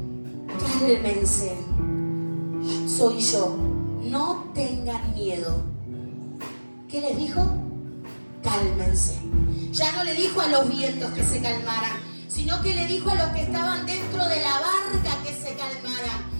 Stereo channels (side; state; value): both; inverted; correlation -1.00